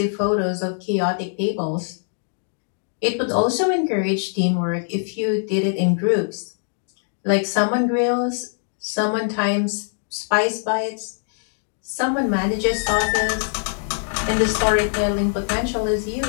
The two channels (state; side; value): silent; right; digital silence